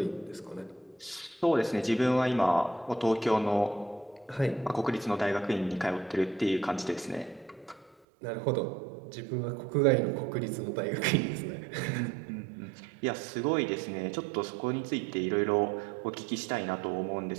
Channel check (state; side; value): drops out; left; at 8.0 s